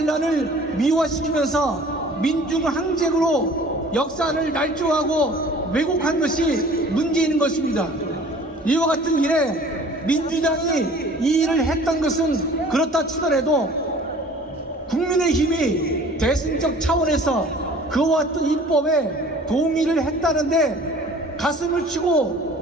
미화시키면서 민중 항쟁으로 역사를 날조하고 왜곡한 것이 문제인 것입니다. 이와 같은 일에 민주당이 이 일을 했던 것은 그렇다 치더라도 국민의힘이 대승적 차원에서 그와 같은 입법에 동의를 했다는데 가슴을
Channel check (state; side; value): normal; both; correlation 0.48